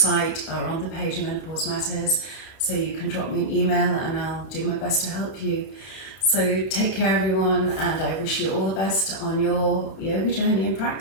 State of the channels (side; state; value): right; late; 31 ms